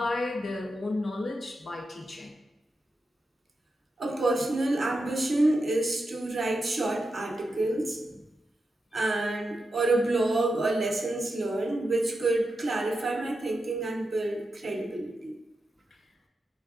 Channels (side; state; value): both; normal; correlation 0.88